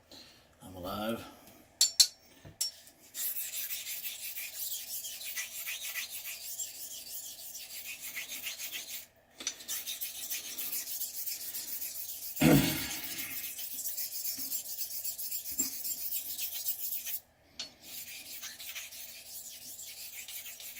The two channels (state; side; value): identical; both; correlation 1.00